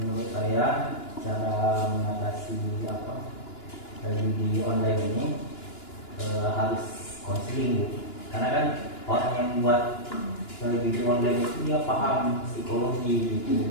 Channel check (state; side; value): late; right; 2.9 ms